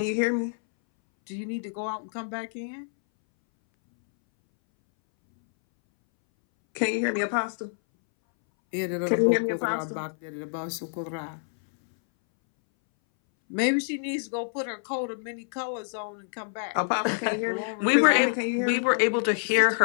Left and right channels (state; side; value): silent; right; 60 dB below the other